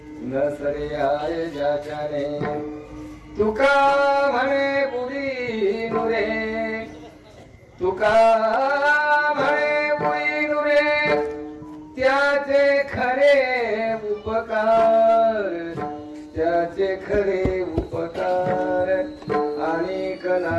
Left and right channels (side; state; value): both; identical; correlation 1.00